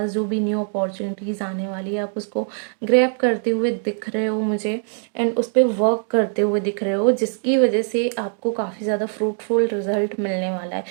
जो भी न्यू अपॉर्चुनिटीज़ आने वाली है आप उसको ग्रैब करते हुए दिख रहे हो मुझे, एंड उस पर वर्क करते हुए दिख रहे हो, जिसकी वजह से आपको काफ़ी ज़्यादा फ्रूटफुल रिजल्ट मिलने वाला है।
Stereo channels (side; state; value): left; silent; digital silence